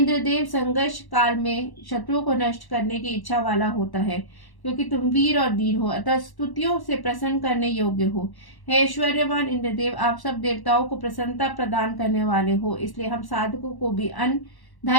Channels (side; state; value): right; late; 1.1 ms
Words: संघर्ष काल में शत्रुओं को नष्ट करने की इच्छा वाला होता है, क्योंकि तुम वीर और धीर हो, अतः स्तुतियों से प्रसन्न करने योग्य हो। हे ऐश्वर्यवान इंद्रदेव, आप सब देवताओं को प्रसन्नता प्रदान करने वाले हो, इसलिए हम साधकों को भी अन्न,